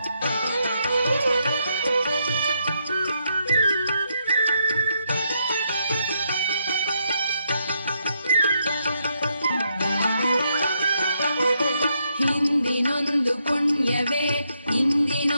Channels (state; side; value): inverted; both; correlation -0.78